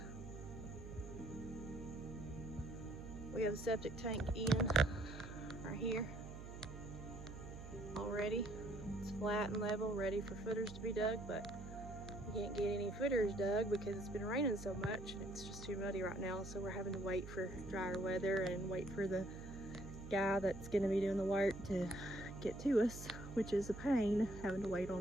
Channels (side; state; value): right; noise; hum, 11 dB below the sound